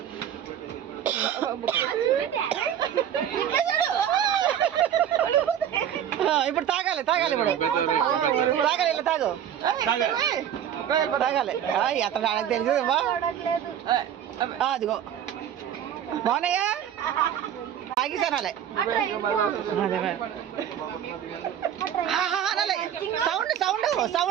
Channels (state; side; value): quieter; left; 9.7 dB